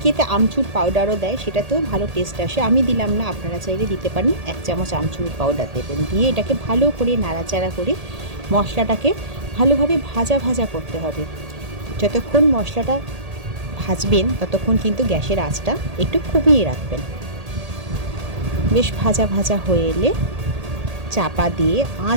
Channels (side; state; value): left; late; 1.8 ms